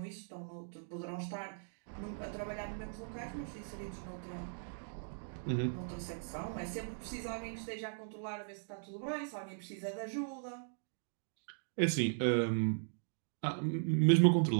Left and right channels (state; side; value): silent; left; digital silence